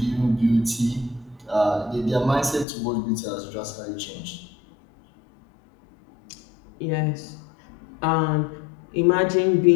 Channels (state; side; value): drops out; right; at 2.7 s